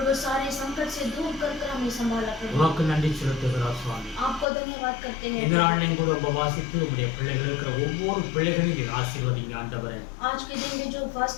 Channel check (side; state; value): right; drops out; at 4.5 s